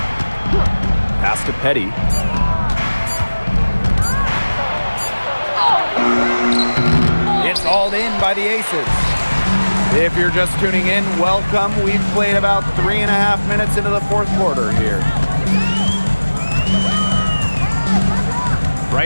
Pass to Petty. It's hauled in by the Aces. If you're just tuning in, welcome. We've played about 3.5 minutes into the fourth quarter here.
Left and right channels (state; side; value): inverted; both; correlation -1.00